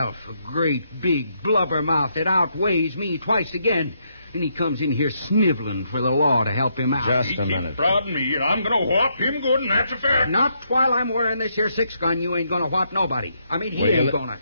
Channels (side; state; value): both; inverted; correlation -0.76